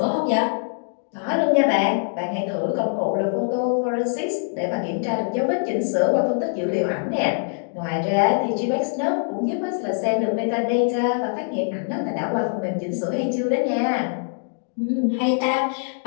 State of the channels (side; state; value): right; silent; digital silence